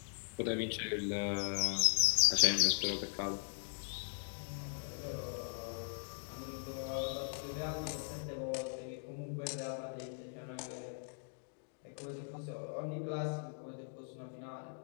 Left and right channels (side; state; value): right; silent; digital silence